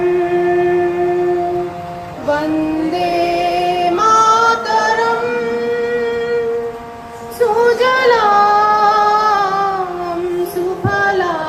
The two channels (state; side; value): identical; both; correlation 1.00